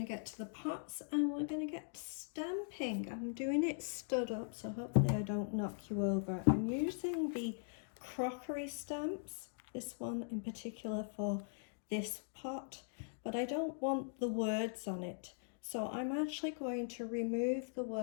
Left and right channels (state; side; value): silent; right; digital silence